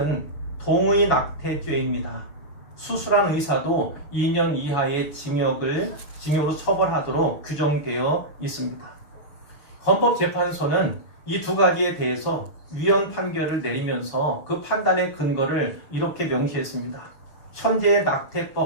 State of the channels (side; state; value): right; late; 6.9 ms